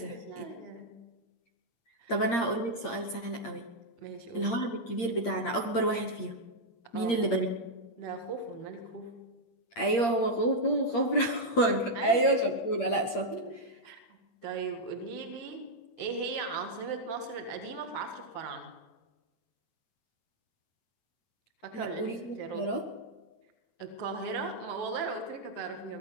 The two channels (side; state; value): right; late; 8.6 ms